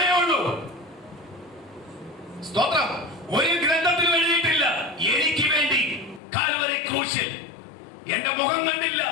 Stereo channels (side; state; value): right; drops out; at 6.2 s